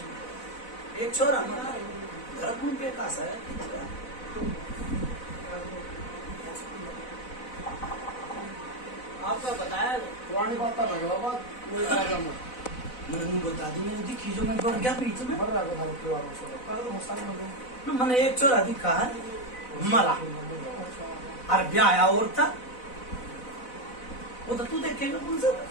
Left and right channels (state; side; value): late; right; 4.0 ms